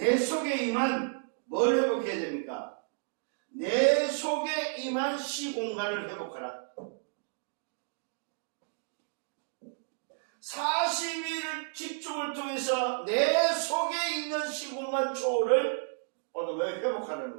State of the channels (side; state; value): left; silent; digital silence